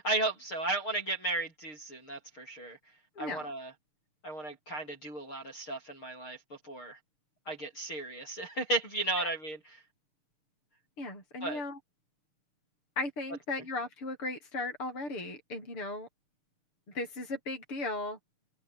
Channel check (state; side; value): late; right; 6.9 ms